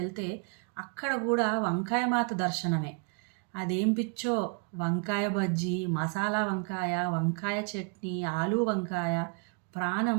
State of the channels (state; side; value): quieter; left; 35.8 dB